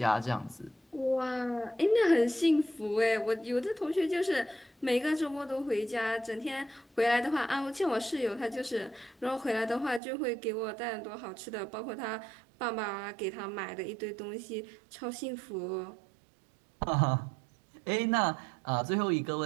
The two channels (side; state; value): left; drops out; at 10.0 s